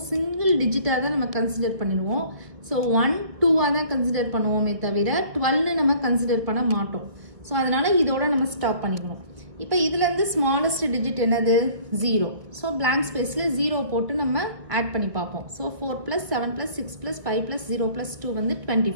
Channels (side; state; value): left; late; 1.5 ms